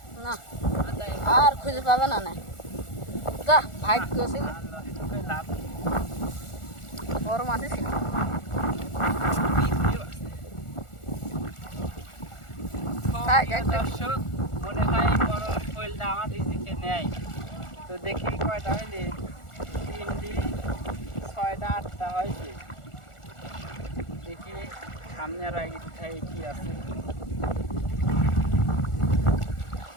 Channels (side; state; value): right; late; 1.4 ms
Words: না আর খুঁজে পাবে না না যা ভাগ্য ছিল বড় মাছই ছিল। দর্শক মনে হয় বড় শৈলটা আমার রিজিকে নেয়। তো দেখি কয়টা হইলে 3টি 6টা 8টা হয়েছে। দেখি সামনে আর আগে কোথায় কি আছে।